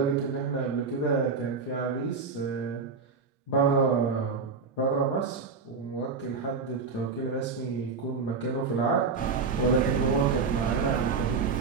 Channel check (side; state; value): left; quieter; 5.0 dB